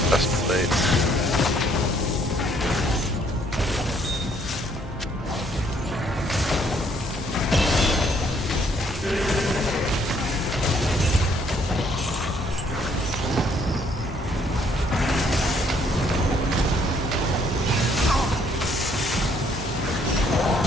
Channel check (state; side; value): normal; both; correlation 0.66